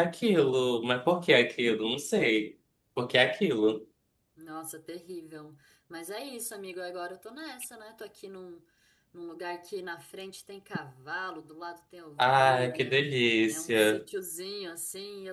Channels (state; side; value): identical; both; correlation 1.00